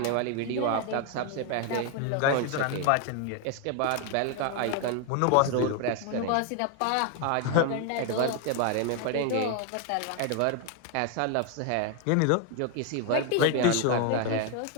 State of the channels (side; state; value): both; different; correlation 0.01